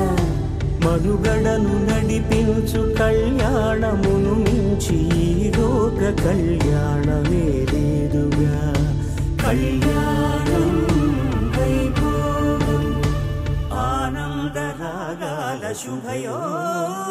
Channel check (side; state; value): both; identical; correlation 1.00